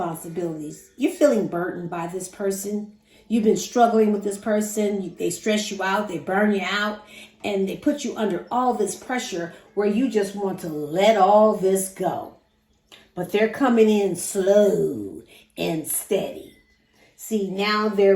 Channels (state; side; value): identical; both; correlation 1.00